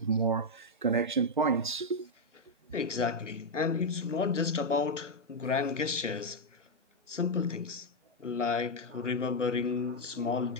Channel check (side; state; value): both; normal; correlation 0.01